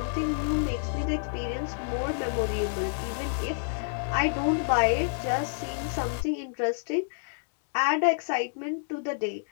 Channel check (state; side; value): silent; right; 59 dB below the other